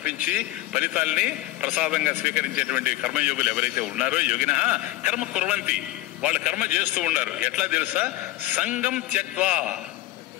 ఫలితాల్ని ప్రసాదంగా స్వీకరించేటువంటి కర్మయోగులు ఎవరైతే ఉన్నారో యోగినః కర్మ కుర్వంతి, వాళ్ళు కర్మ చేస్తూ ఉన్నారు. ఎట్లా తెలుసా? సంగం త్యక్త్వా,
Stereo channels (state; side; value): quieter; right; 16.4 dB